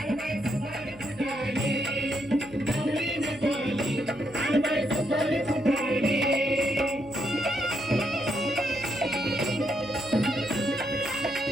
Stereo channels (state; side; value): noise; right; hum, 22 dB below the sound